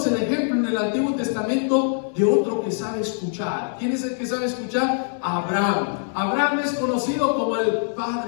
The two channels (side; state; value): right; silent; digital silence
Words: el ejemplo en el Antiguo Testamento de otro que sabe escuchar. ¿Quién es el que sabe escuchar? Abraham. Abraham es conocido como el